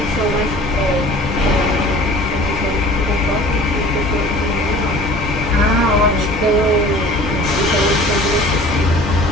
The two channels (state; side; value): normal; both; correlation 0.45